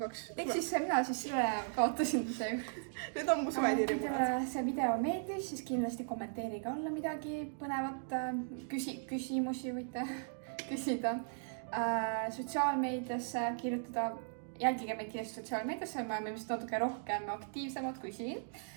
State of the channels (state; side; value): silent; left; digital silence